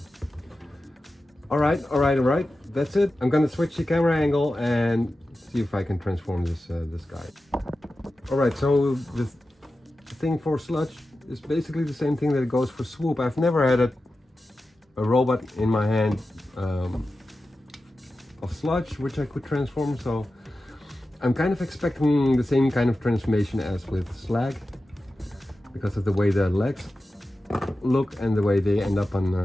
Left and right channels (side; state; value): both; normal; correlation 0.93